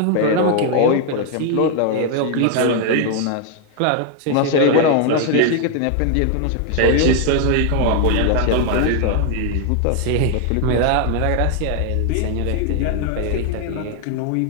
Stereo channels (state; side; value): different; both; correlation 0.00